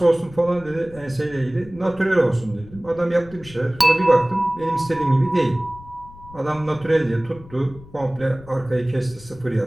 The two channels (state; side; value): noise; left; rumble, 20 dB below the sound